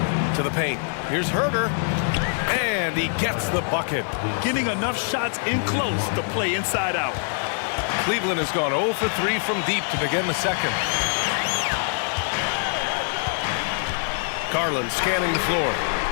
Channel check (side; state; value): right; silent; 62 dB below the other